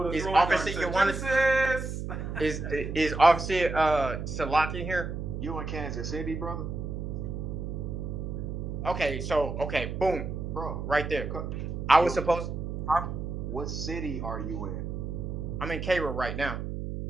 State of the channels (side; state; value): right; noise; hum, 5 dB below the sound